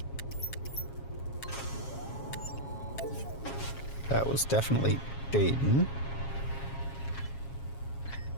That was definitely Dayton.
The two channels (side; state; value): right; late; 7.3 ms